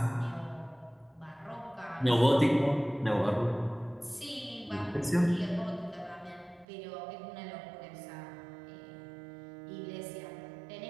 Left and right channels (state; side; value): drops out; left; at 6.7 s